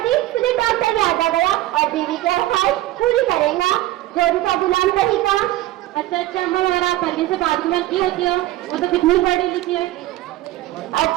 तुझे डॉक्टर याद आ गया और बीवी की ख्वाहिश पूरी करेगा, जोड़ी का गुलाम रहेगा। अच्छा मैं आप पहले से बात में की होती हो, वो तो कितनी पढ़ी लिखी है।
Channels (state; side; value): quieter; left; 16.0 dB